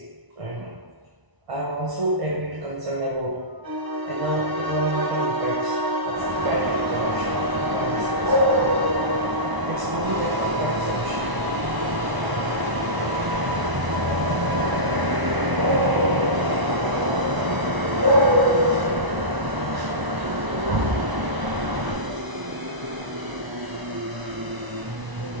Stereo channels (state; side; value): late; left; 1.0 ms